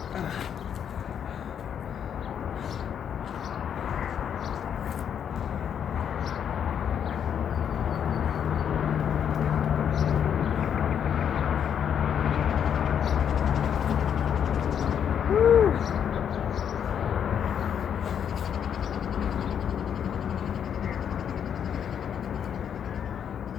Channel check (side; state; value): right; quieter; 8.4 dB